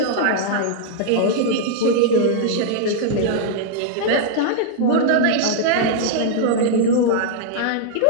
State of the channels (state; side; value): different; both; correlation -0.01